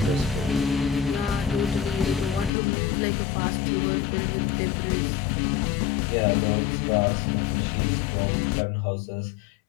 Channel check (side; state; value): right; drops out; at 2.5 s